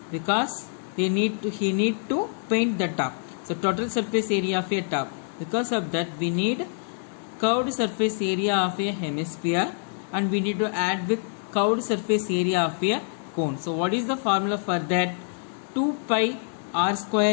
because he need to paint the top. So total surface area of a top. Because of that we need curved surface area of a hemisphere and we need to add with curved surface area of a cone. So what is the formula for that? 2 pi r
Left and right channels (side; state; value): right; silent; 61 dB below the other